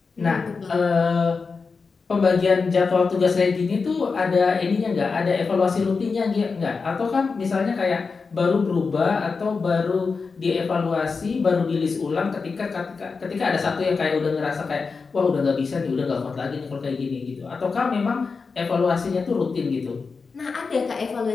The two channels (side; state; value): right; quieter; 4.7 dB